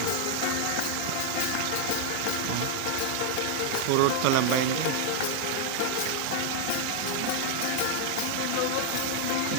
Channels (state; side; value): different; both; correlation 0.00